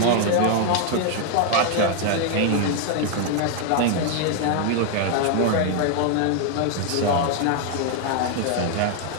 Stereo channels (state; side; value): different; both; correlation 0.00